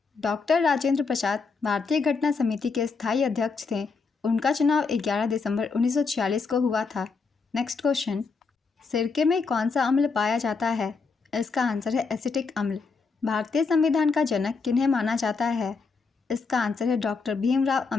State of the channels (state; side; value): quieter; right; 4.7 dB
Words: डॉक्टर राजेंद्र प्रसाद भारतीय घटना समिति के स्थायी अध्यक्ष थे। उनका चुनाव 11 दिसंबर 1946 को हुआ था। नेक्स्ट क्वेश्चन, सिरके में कौन सा अम्ल पाया जाता है? इसका आंसर है एसिटिक अम्ल। भारतीय संविधान का जनक किन्हें माना जाता है? इसका आंसर है डॉक्टर भीमराव